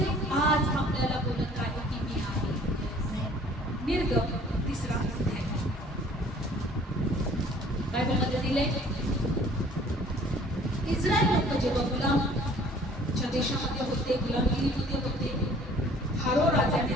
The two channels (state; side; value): normal; both; correlation 0.53